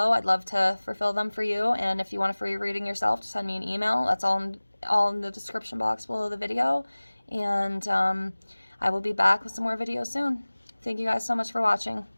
I'd love to fulfill them for you. And if you want a free reading yourself, just send me an email. That's all in the description box below the video. And I will be back with some more videos soon. Thank you guys so much for watching.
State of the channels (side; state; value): both; inverted; correlation -1.00